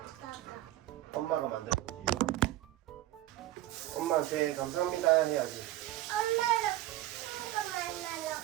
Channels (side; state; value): left; quieter; 15.0 dB